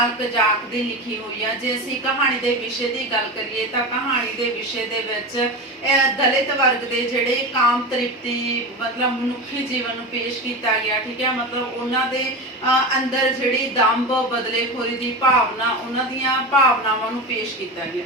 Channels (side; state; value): both; normal; correlation 0.24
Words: ਕਜ਼ਾਕ ਦੀ ਲਿਖੀ ਹੋਈ ਹੈ। ਜੇ ਅਸੀਂ ਕਹਾਣੀ ਦੇ ਵਿਸ਼ੇ ਦੀ ਗੱਲ ਕਰੀਏ ਤਾਂ ਕਹਾਣੀ ਦੇ ਵਿਸ਼ੇ ਦੇ ਵਿੱਚ ਦਲਿਤ ਵਰਗ ਦੇ ਜਿਹੜੇ ਕਾਮ ਤ੍ਰਿਪਤੀ ਮਤਲਬ ਮਨੁੱਖੀ ਜੀਵਨ ਨੂੰ ਪੇਸ਼ ਕੀਤਾ ਗਿਆ। ਠੀਕ ਹੈ, ਮਤਲਬ ਉਹਨਾਂ ਦੇ ਅੰਦਰ ਜਿਹੜੀ ਦੰਭ ਬਦਲੇਖੋਰੀ ਦੀ ਭਾਵਨਾ, ਉਹਨਾਂ ਦੀਆਂ ਭਾਵਨਾਵਾਂ ਨੂੰ ਪੇਸ਼ ਕੀਤਾ ਗਿਆ।